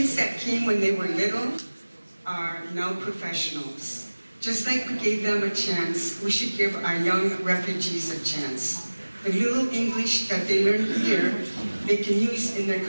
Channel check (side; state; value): both; inverted; correlation -1.00